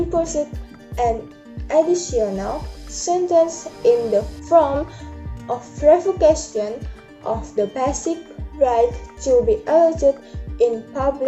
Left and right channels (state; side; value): identical; both; correlation 1.00